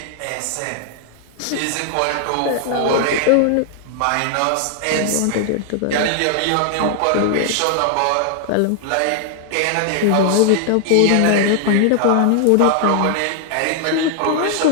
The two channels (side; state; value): both; different; correlation 0.00